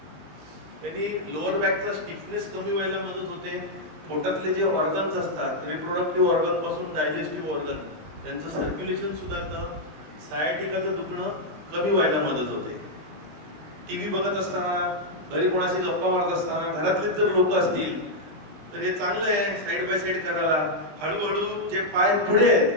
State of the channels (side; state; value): left; late; 20 ms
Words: त्यांनी लोअर बॅकचा स्टिफनेस कमी व्हायला मदत होते. पोटातले जे ऑर्गन्स असतात, रिप्रोडक्टिव्ह ऑर्गन पासून डायजेस्टिव्ह ऑर्गन, त्यांचं सर्क्युलेशन सुधारतं. सायटिकाचं दुखणं कमी व्हायला मदत होते. टीव्ही बघत असताना, घरी कोणाशी गप्पा मारत असताना, घरातलेच जर लोक असतील तर हे चांगलं आहे साईड बाय साईड करायला. हळूहळू जे पाय पुढे